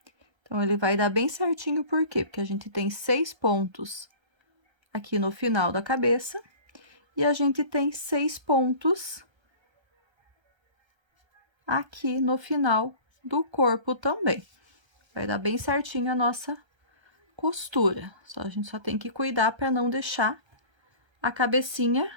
Então, ele vai dar bem certinho, por quê? Porque a gente tem 6 pontos aqui no final da cabeça e a gente tem 6 pontos aqui no final do corpo também. Vai dar bem certinho a nossa costura. A gente só tem que cuidar para não deixar a cabecinha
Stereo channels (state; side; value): late; left; 1.3 ms